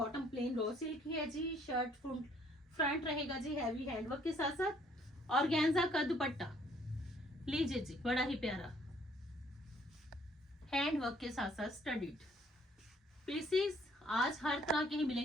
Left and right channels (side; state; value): both; normal; correlation 0.63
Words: प्लेन रॉ सिल्क की है जी, शर्ट फ्रंट रहेगा जी हैवी हैंडवर्क के साथ साथ और गैंजा का दुपट्टा। लीजिए जी बड़ा ही प्यारा हैंडवर्क के साथ साथ स्टडीड पीसेस आज हर तरह के ही